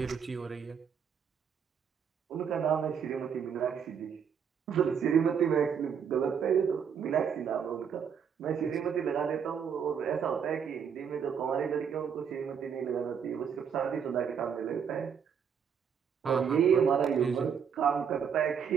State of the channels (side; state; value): left; quieter; 7.3 dB